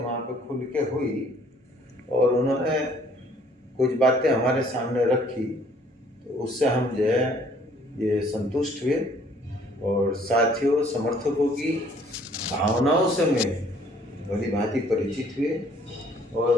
पे खुल के हुई और उन्होंने कुछ बातें हमारे सामने रखी, तो उससे हम जो है ये संतुष्ट हुए और साथियों, समर्थकों की भावनाओं से मैं भली भांति परिचित हुए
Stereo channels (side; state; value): both; normal; correlation 0.59